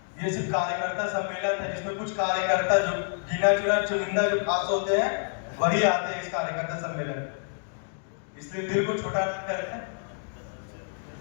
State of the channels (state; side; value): silent; right; digital silence